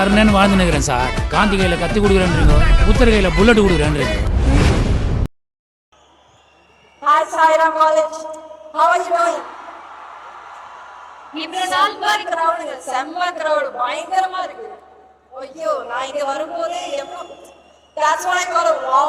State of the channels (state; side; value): identical; both; correlation 1.00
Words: வாழ்ந்து நிற்கிறேன் சார். காந்தி கையில கத்தி கொடுக்குறேன்றீங்க, புத்தர் கையில bullet கொடுக்குறேன்றீங்க. Hi Sairam College, how are you doing? இவ்வளவு நாள் பாரு கிரவுடுங்க, செம்ம கிரவுடு, பயங்கரமா இருக்கு. ஐயோ, நான் இங்க வரும்போது that's what I call a